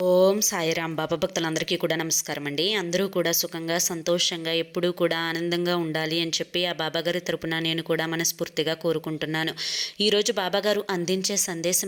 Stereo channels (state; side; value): identical; both; correlation 1.00